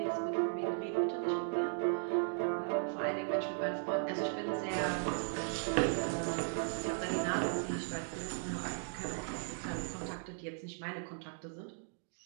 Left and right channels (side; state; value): left; silent; digital silence